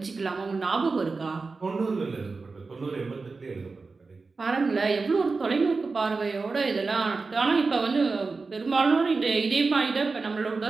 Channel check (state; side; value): quieter; left; 4.1 dB